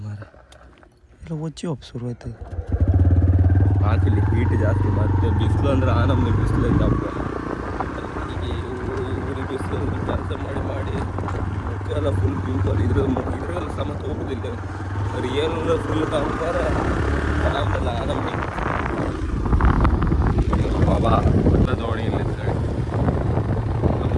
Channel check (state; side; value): identical; both; correlation 1.00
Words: ಮಾರ ಎಲ್ಲ ಒಚ್ಚಿ ಶುರು ಆಯ್ತು. ಹಾಕಿಲ್ಲಿ ಹೀಟ್ ಜಾಸ್ತಿ, ಮತ್ತೆ ಬಿಸಿಲು ಅಂದ್ರೆ ನಮ್ಮದು ಬಿಸಿಲು ಹಬ್ಬ. ಊರಿಗೆ ಬಿಸಿಲು ಕೆಲಸ ಮಾಡಿ ಎಲ್ಲ ಫುಲ್ ಪಿಂಪಲ್ ಇದ್ರೆಲ್ಲ ಸಮತ ಹೋಗೋದಿಲ್ಲ. ರಿಯಲ್ ಫುಲ್ ಕಾಣ್ತಾರೆ ಆರಾಮಲ್ಲ ನಮಗೆ. ಬಾಬಾ ಎಲ್ಲ ದೋಣಿ ಇಲ್ಲ